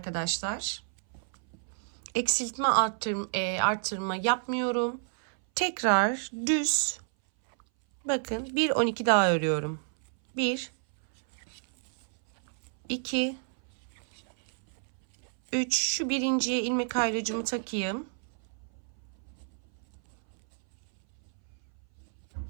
eksiltme arttırma yapmıyorum. Tekrar düz bakın bir 12 daha örüyorum. 1, 2, 3, şu birinciye ilmek ayrıcımı takayım.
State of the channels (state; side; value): silent; left; 58 dB below the other